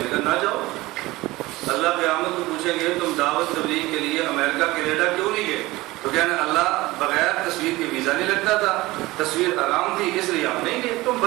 کہا نہ جاؤ، اللہ قیامت کو پوچھیں گے تم دعوت تبلیغ کے لیے امریکہ کینیڈا کیوں نہیں گئے؟ تو کہنا اللہ بغیر تصویر کے ویزا نہیں لگتا تھا، تصویر حرام تھی اس لیے ہم نہیں گئے۔ تم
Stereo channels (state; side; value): quieter; left; 19.7 dB